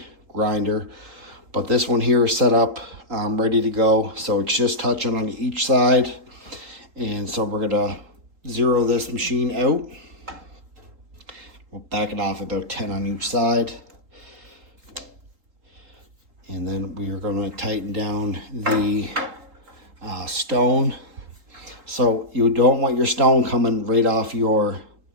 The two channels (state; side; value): late; left; 3.8 ms